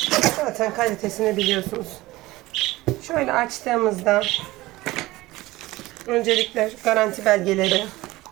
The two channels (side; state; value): left; quieter; 18.9 dB